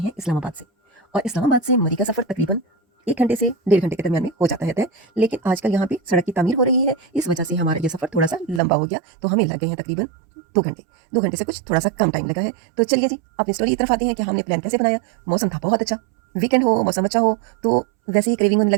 इस्लामाबाद से, और इस्लामाबाद से मरी का सफ़र तकरीबन 1 घंटे से 1.5 घंटे के दरमियान में हो जाता है तय। लेकिन आजकल यहाँ पे सड़क की तामीर हो रही है, इस वजह से हमारा ये सफ़र थोड़ा सा लंबा हो गया, तो हमें लग गए हैं तकरीबन 2 घंटे। 2 घंटे से कुछ थोड़ा सा कम टाइम लगा है। तो चलिए जी अपनी स्टोरी की तरफ आते हैं कि हमने प्लान कैसे बनाया। मौसम था बहुत अच्छा, वीकेंड हो, मौसम अच्छा हो, तो वैसे ही क्रेविंग होने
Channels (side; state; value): left; drops out; at 8.6 s